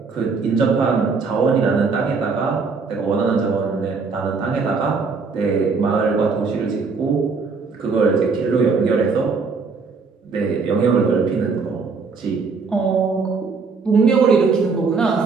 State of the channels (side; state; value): left; quieter; 4.8 dB